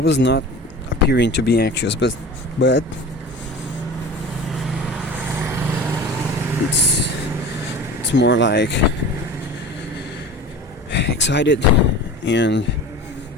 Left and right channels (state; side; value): normal; both; correlation 0.36